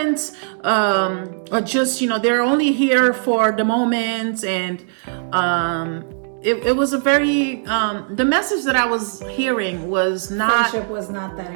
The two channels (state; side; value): silent; left; digital silence